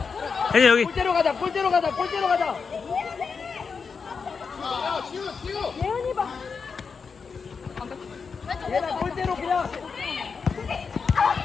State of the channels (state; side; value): quieter; right; 5.4 dB